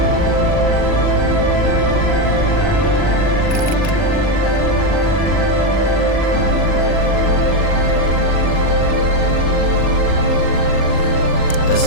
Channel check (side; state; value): right; late; 40 ms